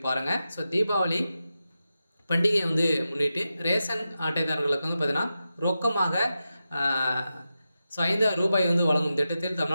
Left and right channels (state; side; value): inverted; both; correlation -0.91